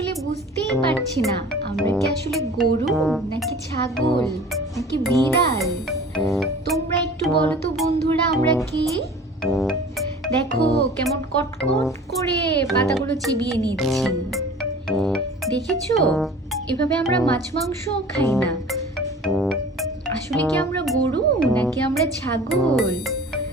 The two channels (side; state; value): both; normal; correlation 0.43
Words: বুঝতেই পারছি না আমরা কি আসলে গরু নাকি ছাগল নাকি বিড়াল। তোমরা একটু বলো তো বন্ধুরা, আমরা কি? দেখো কেমন কটকট করে পাতাগুলো চিবিয়ে নিচ্ছি, দেখেছো? এভাবে আমরা মাছ মাংস খাই না। আসলে কি আমরা গরু নাকি আমরা ছাগল